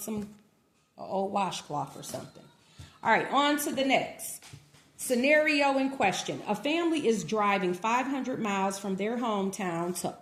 some old washcloth or something. All right, on to the next. Scenario in question. A family is driving 500 miles from their hometown to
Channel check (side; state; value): both; identical; correlation 1.00